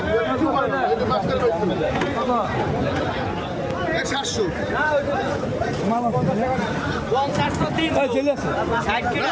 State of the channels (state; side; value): identical; both; correlation 1.00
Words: একটু পরে না এটা মাস্টার পাইছে কত 700 মামা কত টাকা 50 দিন চলে আসে 60